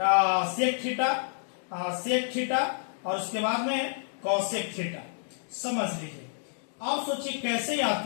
सेक थीटा और उसके बाद में कॉसेक थीटा। समझ लीजिए। अब सोचिए कैसे याद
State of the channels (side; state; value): right; silent; digital silence